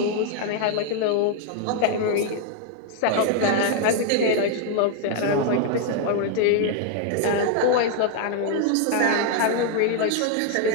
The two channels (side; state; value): both; different; correlation 0.00